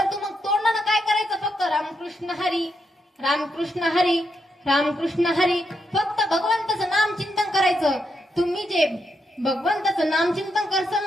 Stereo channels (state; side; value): normal; both; correlation 0.81